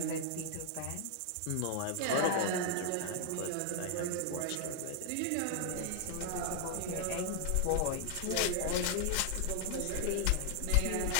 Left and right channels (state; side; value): different; both; correlation 0.00